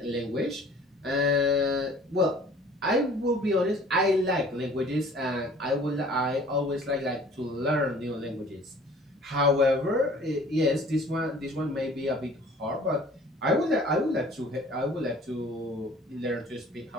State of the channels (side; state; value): both; normal; correlation 0.51